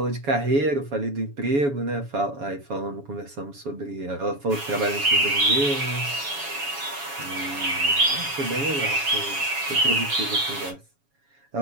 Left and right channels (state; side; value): late; left; 7.1 ms